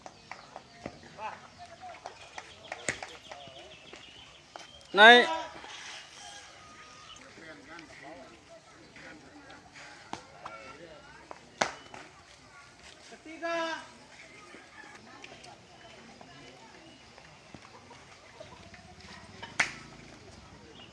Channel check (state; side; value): identical; both; correlation 1.00